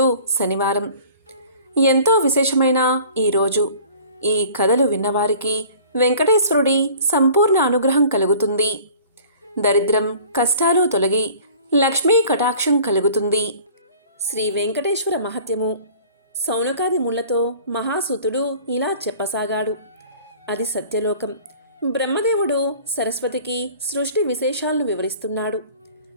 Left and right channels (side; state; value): both; inverted; correlation -0.47